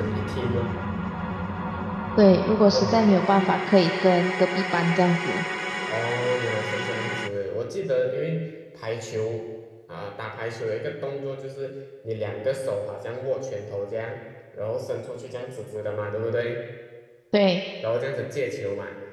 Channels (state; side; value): identical; both; correlation 1.00